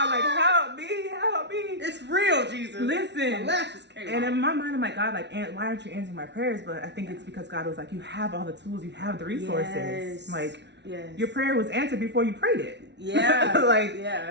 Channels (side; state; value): left; late; 0.50 ms